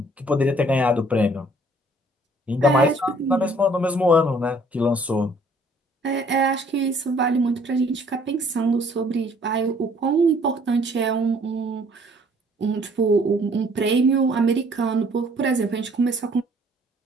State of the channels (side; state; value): both; normal; correlation 0.59